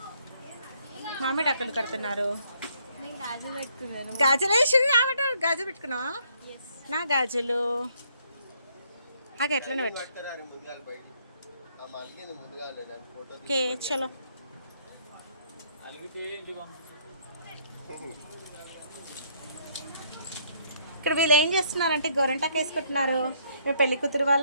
మామిడి అక్కలు కడుతున్నారు. గాజులు వేసి గాజులు పెట్టుకున్నావా? నా గాజులు ఎట్లనే పెట్టు. ఓకే చలో. ఇక్కడ వీళ్ళు ఏం చేస్తున్నారంటే గోరంటాకు వేసుకుంటున్నారు. మేము పెళ్లి కూతురు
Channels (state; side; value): inverted; both; correlation -0.68